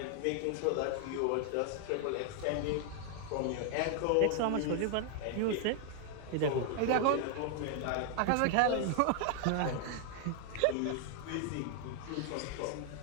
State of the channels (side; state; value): both; different; correlation 0.00